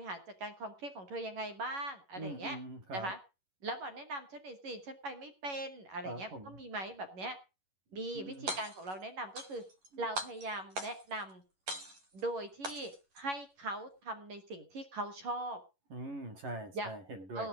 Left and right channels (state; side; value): late; left; 11 ms